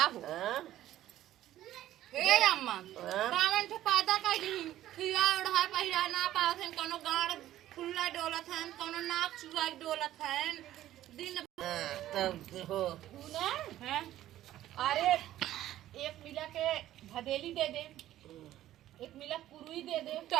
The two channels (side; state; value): left; quieter; 13.5 dB